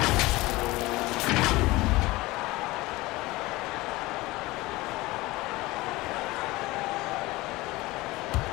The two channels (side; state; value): right; quieter; 20.4 dB